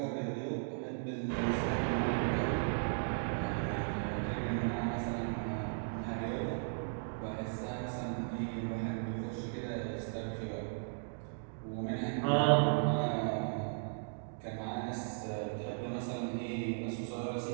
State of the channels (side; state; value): left; silent; digital silence